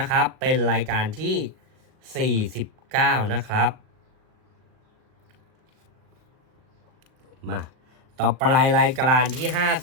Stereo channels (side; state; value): left; late; 38 ms